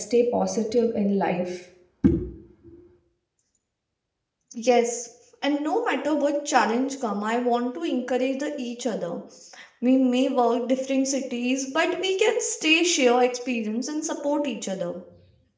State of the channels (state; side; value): identical; both; correlation 1.00